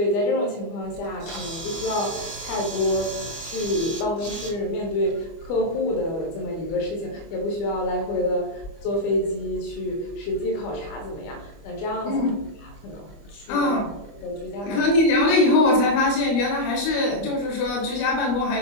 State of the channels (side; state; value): right; late; 25 ms